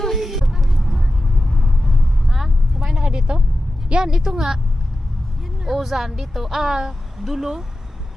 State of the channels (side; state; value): both; normal; correlation 0.93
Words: Ha? Kumain na ka dito? Yan, ito nga. Ozan dito. Ah, Dulo.